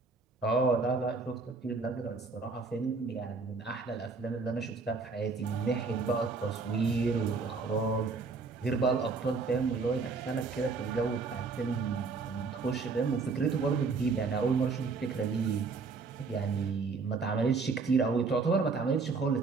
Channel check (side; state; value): left; quieter; 4.4 dB